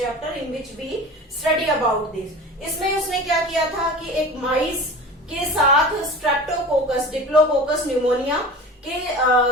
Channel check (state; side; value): normal; both; correlation 0.35